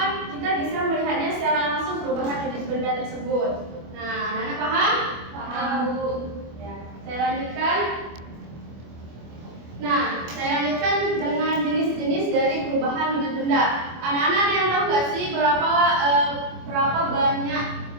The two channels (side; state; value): left; late; 25 ms